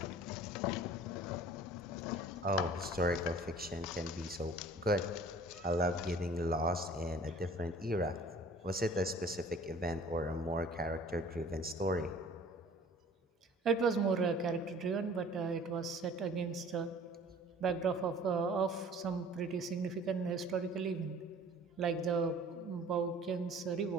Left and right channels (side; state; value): both; normal; correlation 0.49